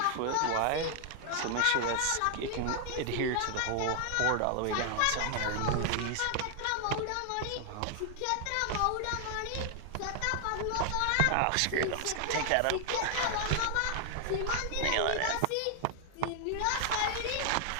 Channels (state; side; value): different; both; correlation 0.00